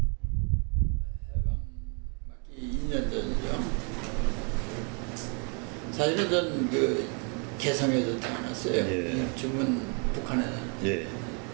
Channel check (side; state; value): left; quieter; 37.3 dB